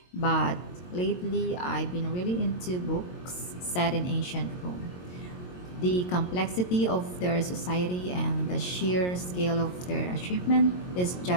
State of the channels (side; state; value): right; late; 22 ms